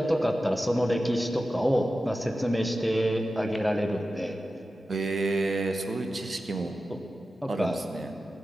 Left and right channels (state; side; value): normal; both; correlation 0.93